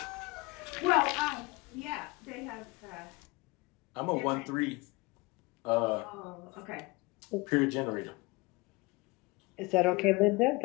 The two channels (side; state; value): right; quieter; 24.1 dB